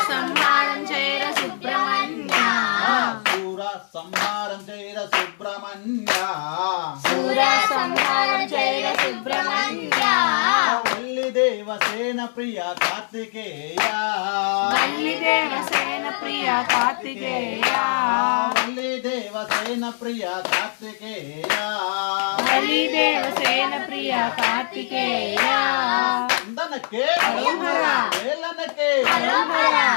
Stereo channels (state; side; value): silent; right; 64 dB below the other